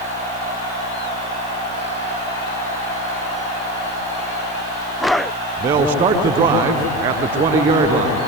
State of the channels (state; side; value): noise; right; hiss, 23 dB below the sound